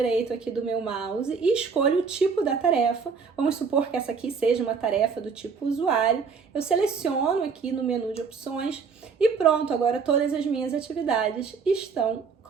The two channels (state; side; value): quieter; left; 5.5 dB